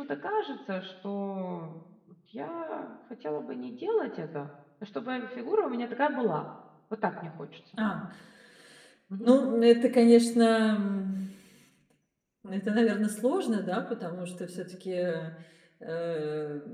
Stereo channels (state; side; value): identical; both; correlation 1.00